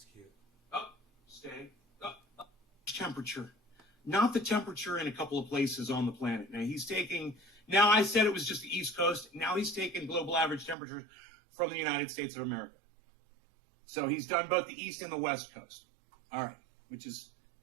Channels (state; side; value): drops out; left; at 10.8 s